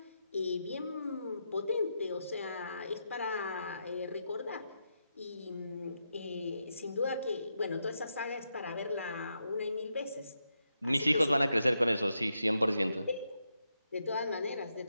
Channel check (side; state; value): both; inverted; correlation -0.84